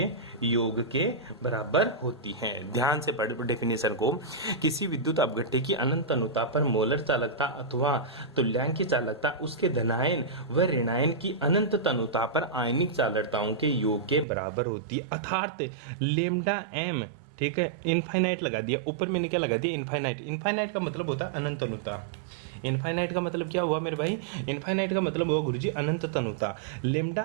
योग के बराबर होती है। ध्यान से पढ़ डेफिनेशन को। किसी विद्युत अपघट्य की अनंत अनुता पर मोलर चालकता अथवा तुल्यांकी चालकता उसके धनायन व ऋणायन की अनंत तनुता पर आयनिक चालकताओं के योग के बराबर होती है। अर्थात लेमडा एम, ठीक है, इनफाइनाइट लगा दिया ऊपर, मैंने क्या लगा दिया? इनफाइनाइट। इनफाइनाइट का मतलब होता है अनंत अनुता। इनफाइनाइट का मतलब क्या हुआ मेरे भाई? इनफाइनाइट का मतलब हुआ गुरुजी अनंत तनुता।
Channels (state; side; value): drops out; left; at 14.2 s